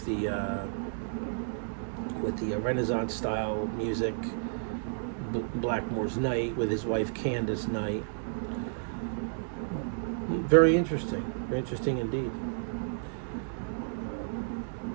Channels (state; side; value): silent; left; digital silence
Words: with the Renaissance style music, Blackmore's Night, with his wife Candace Knight. Very interesting indeed.